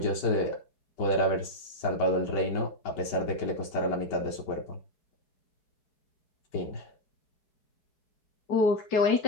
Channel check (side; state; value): right; late; 5.3 ms